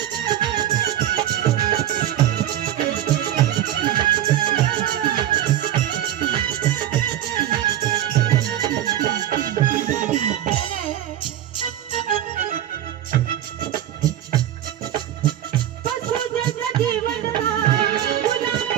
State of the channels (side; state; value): left; quieter; 11.8 dB